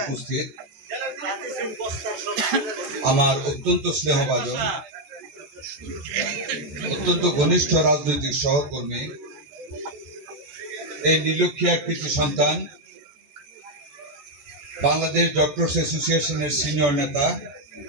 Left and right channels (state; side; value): late; left; 13 ms